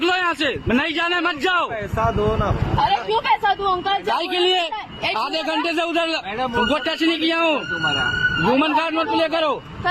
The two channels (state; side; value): identical; both; correlation 1.00